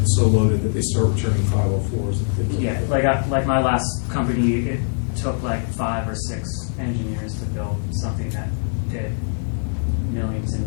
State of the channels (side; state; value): right; silent; 64 dB below the other